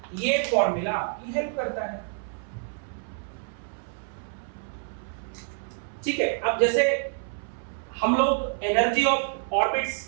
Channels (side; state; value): left; silent; 60 dB below the other